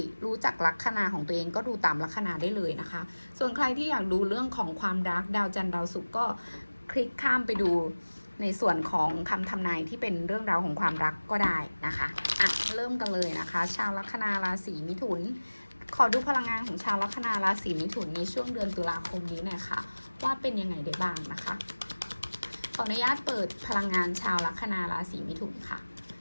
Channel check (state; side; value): inverted; both; correlation -1.00